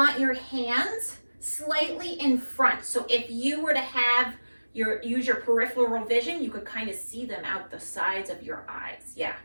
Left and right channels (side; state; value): both; inverted; correlation -1.00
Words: your hands slightly in front. So if you were to have use your peripheral vision, you could kind of see them out the sides of your eyes. Yeah,